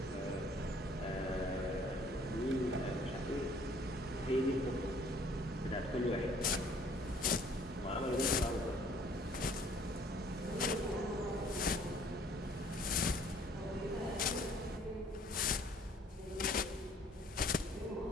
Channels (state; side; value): normal; both; correlation 0.58